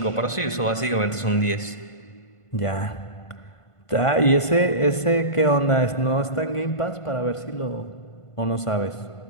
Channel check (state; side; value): late; right; 1.5 ms